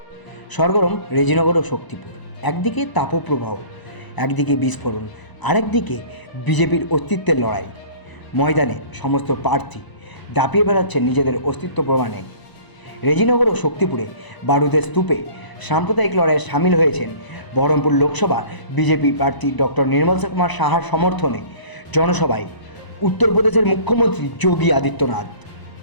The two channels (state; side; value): late; right; 1.0 ms